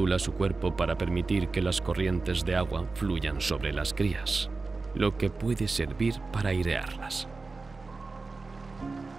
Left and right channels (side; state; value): left; quieter; 3.8 dB